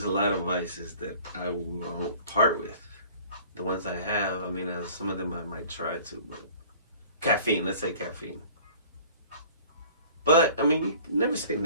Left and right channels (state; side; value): inverted; both; correlation -0.49